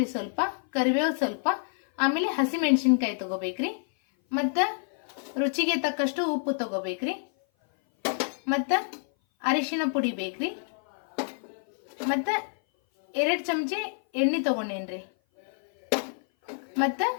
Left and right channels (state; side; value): silent; right; 56 dB below the other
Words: ಸ್ವಲ್ಪ, ಕರಿಬೇವು ಸ್ವಲ್ಪ, ಆಮೇಲೆ ಹಸಿ ಮೆಣಸಿನ್ಕಾಯಿ ತಗೋಬೇಕ್ರಿ, ಮತ್ತ ರುಚಿಗೆ ತಕ್ಕಷ್ಟು ಉಪ್ಪು ತಗೋಬೇಕ್ರಿ, ಮತ್ತ ಅರಿಶಿನ ಪುಡಿ ಬೇಕ್ರಿ, ಮತ್ತ 2 ಚಮಚೆ ಎಣ್ಣೆ ತಗೊಂಡೇನ್ರಿ, ಮತ್ತ